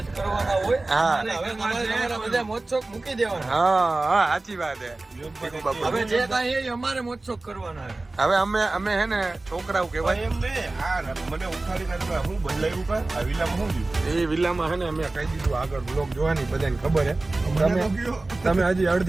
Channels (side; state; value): left; quieter; 3.1 dB